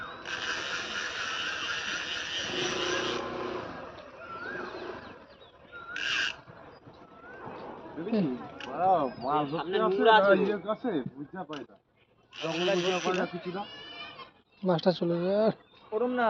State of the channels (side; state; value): both; identical; correlation 1.00